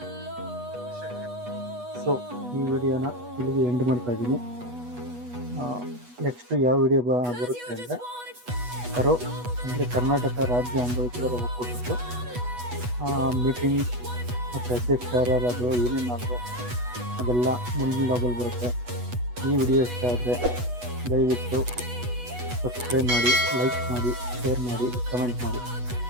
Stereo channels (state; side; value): late; left; 8.2 ms